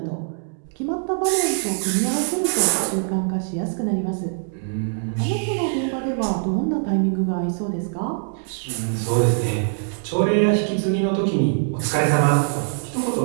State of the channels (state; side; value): silent; left; digital silence